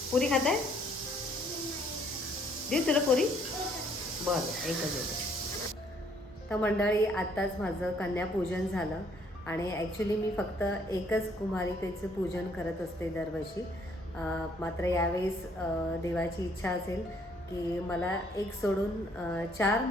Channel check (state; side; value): normal; both; correlation 0.65